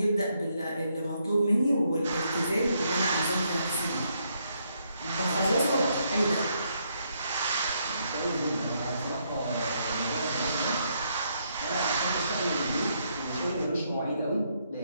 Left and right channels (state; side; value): inverted; both; correlation -0.75